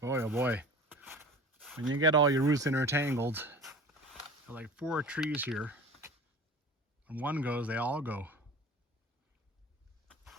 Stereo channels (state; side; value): normal; both; correlation 0.39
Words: Boy, oh boy. When you get all your roots intertangled, there are like 4 trees here. When one goes, they all go.